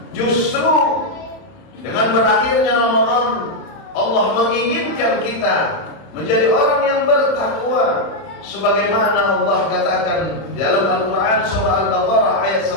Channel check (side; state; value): right; late; 31 ms